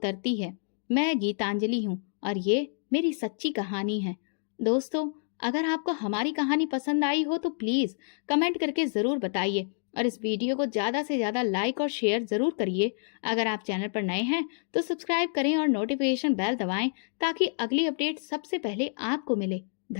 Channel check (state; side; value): silent; right; digital silence